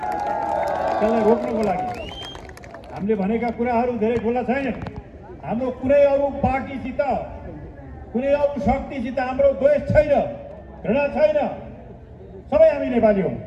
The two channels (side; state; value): both; identical; correlation 1.00